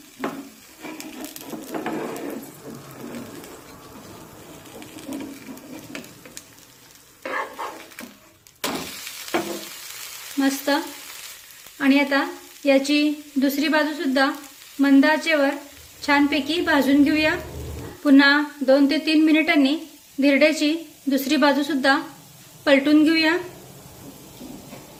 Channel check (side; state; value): both; identical; correlation 1.00